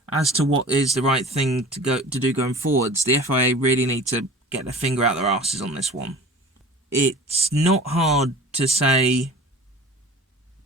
As to what is the right thing to do going forwards, the FIA really need to get their finger out their asses on this one. It's not hard to say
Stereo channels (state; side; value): normal; both; correlation 0.41